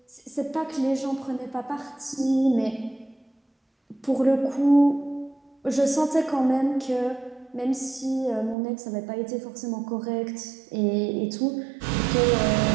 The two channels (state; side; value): drops out; left; at 8.6 s